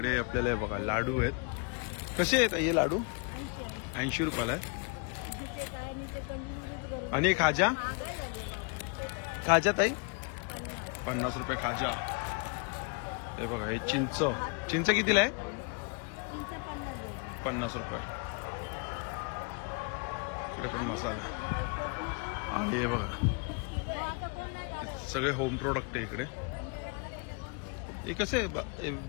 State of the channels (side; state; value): right; quieter; 34.3 dB